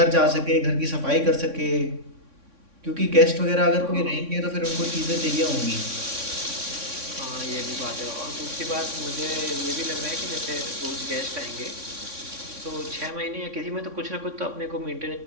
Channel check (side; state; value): left; late; 3.6 ms